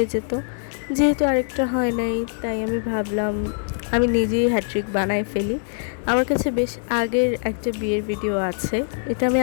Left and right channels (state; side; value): silent; right; 60 dB below the other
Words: যেত। যেহেতু আরেকটা হয় নাই, তাই আমি ভাবলাম আমি নিজেই হ্যাট্রিক বানাই ফেলি। আমার কাছে বেশ আগের একটা বিয়ের ভিডিও আছে, এটা আমি